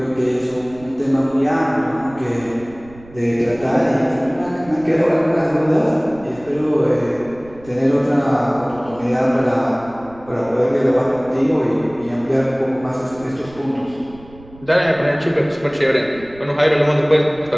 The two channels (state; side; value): noise; right; rumble, 22 dB below the sound